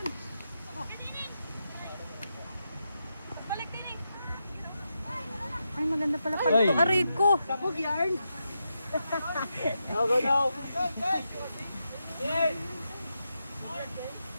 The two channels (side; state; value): both; inverted; correlation -0.86